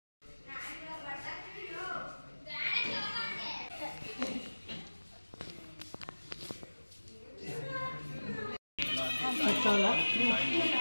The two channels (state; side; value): inverted; both; correlation -1.00